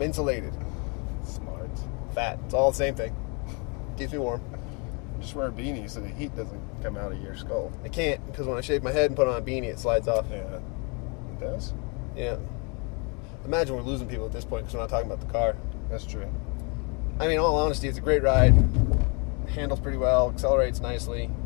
insulated. Smart. Fat. It's all the same thing. Keeps me warm. Just wear a beanie so the heat doesn't come out of your skull. I can't because when I shave my head and put on a beanie, it slides off. Yeah. It does? Yeah. Imagine we're losing people at this point because we're not talking about the car. That's true. I mean, in all honesty, it's a great ride. Handles pretty well, accelerates nicely.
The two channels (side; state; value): right; quieter; 33.3 dB